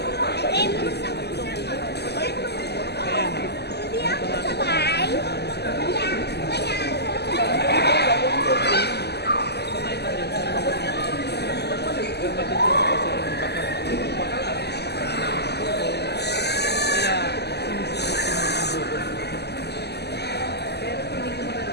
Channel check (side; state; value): right; late; 0.49 ms